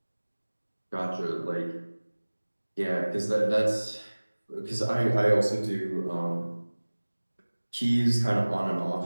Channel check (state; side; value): inverted; both; correlation -1.00